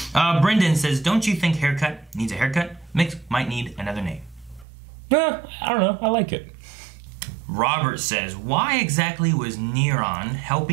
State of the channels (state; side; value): drops out; left; at 4.7 s